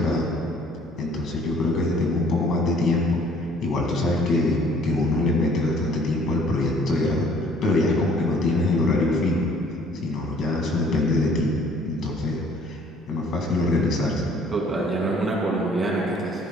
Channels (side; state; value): both; normal; correlation 0.57